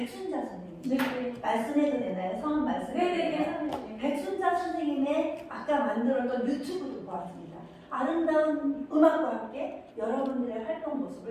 선생님 네. 말씀해도 되나요? 성함 말씀해도 되나요? 네네네. 백순자 선생님의 아까 만들었던 유튜브도 보았습니다. 아름다운 음악과 함께 여러분들의 활동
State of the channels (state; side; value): identical; both; correlation 1.00